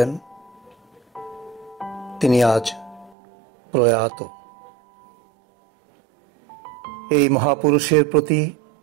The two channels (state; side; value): drops out; left; at 3.2 s